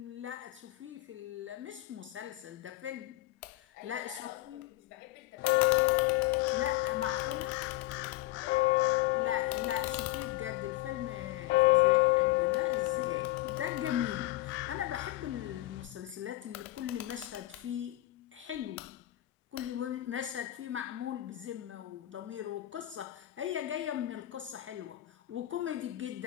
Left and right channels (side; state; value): right; quieter; 16.6 dB